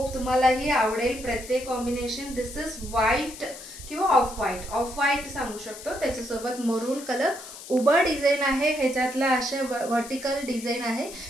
तुम्हालाही आवडेल प्रत्येक कॉम्बिनेशन. दिस इज व्हाईट किंवा ऑफ व्हाईट सांगू शकतो. त्याच्यासोबत मरून कलर उभा डिझाईन आहे. ह्याच्यातला असे व्हर्टिकल डिझाईन आहे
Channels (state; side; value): noise; left; hiss, 14 dB below the sound